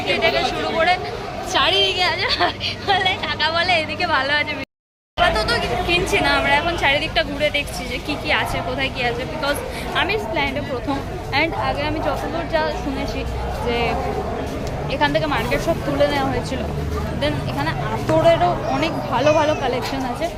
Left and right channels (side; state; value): both; identical; correlation 1.00